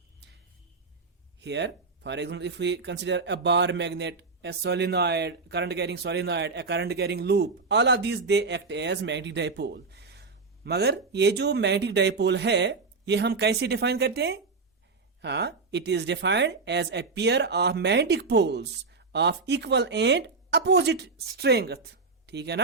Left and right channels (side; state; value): left; quieter; 4.3 dB